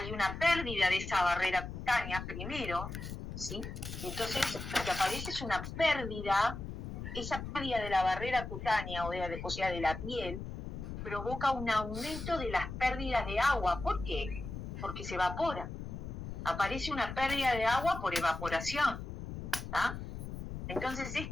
una pérdida de esa barrera cutánea primero, ¿sí? Entonces, lo que aparece es una pérdida, esa pérdida de la barrera cutánea, o sea, de la piel, provoca un aumento de las pérdidas de agua. ¿Por qué? Porque se evapora. Aparece una pérdida de agua por evaporación, ¿tá? Entonces,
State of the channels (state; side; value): noise; left; rumble, 7 dB below the sound